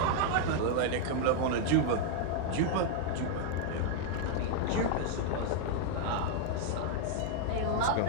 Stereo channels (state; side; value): different; both; correlation 0.00